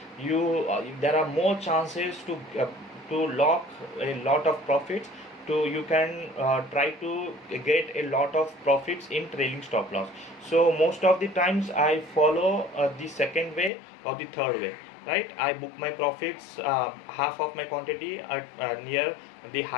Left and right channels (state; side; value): drops out; right; at 13.7 s